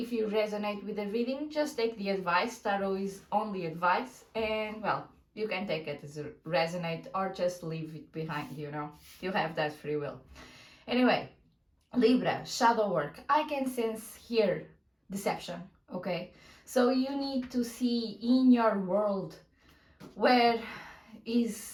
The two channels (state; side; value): identical; both; correlation 1.00